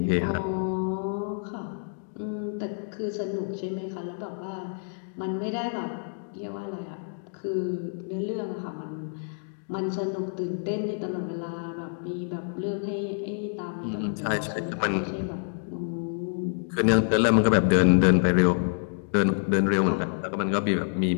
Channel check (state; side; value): silent; right; digital silence